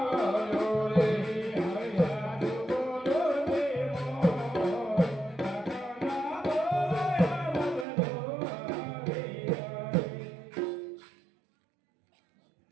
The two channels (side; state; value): left; drops out; at 7.9 s